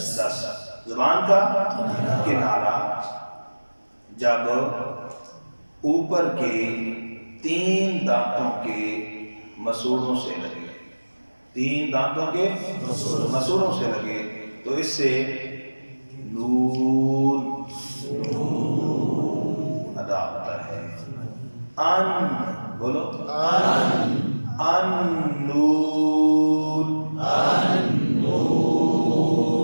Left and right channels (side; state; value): both; inverted; correlation -1.00